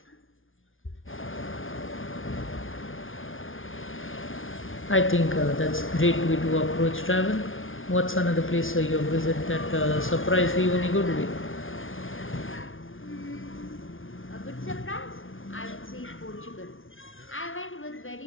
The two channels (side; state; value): right; late; 0.58 ms